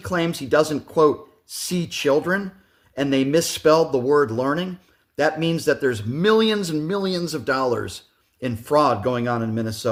he doesn't, quote, see children, and they misspelled the word learning, that means that there's millions and millions of dollars in fraud going on in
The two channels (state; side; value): identical; both; correlation 1.00